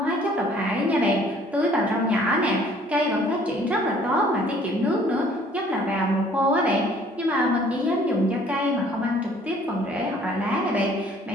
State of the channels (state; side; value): normal; both; correlation 0.57